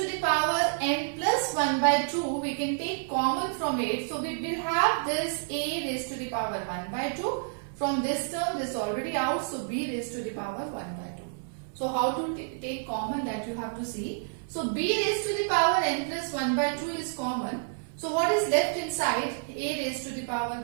the power n plus 1 by 2. We can take common from it. So we will have this a raised to the power 1 by 2. From this term, this is already out. So b raised to the power 1 by 2. So how to take common, that you have to see. So b raised to the power n plus 1 by 2 is common. So what is left inside? A raised to the power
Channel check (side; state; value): left; silent; 58 dB below the other